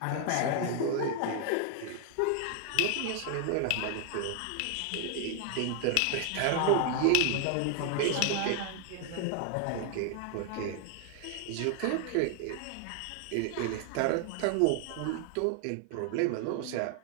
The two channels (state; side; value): different; both; correlation 0.00